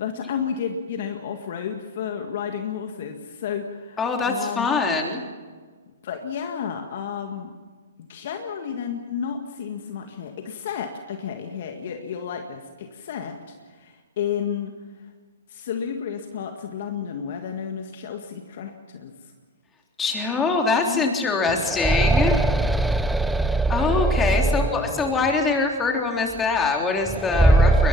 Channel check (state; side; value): normal; both; correlation 0.46